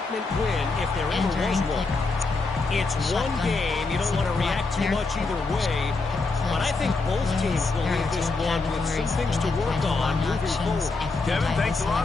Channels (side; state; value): right; quieter; 3.8 dB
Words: win, if there ever was one. It's one game. You don't want to react too much either way. But I think both teams will leave this one with some things to work on moving forward. Kevin, thanks a lot